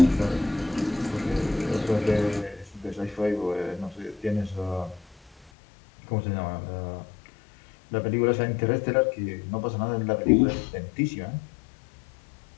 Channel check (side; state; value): right; drops out; at 5.5 s